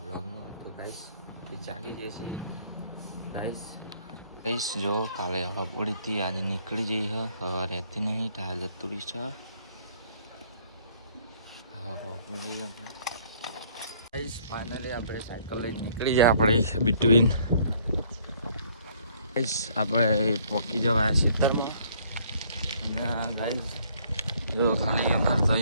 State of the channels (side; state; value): both; inverted; correlation -0.61